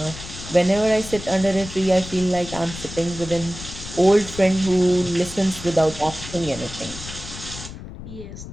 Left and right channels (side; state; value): left; noise; rumble, 12 dB below the sound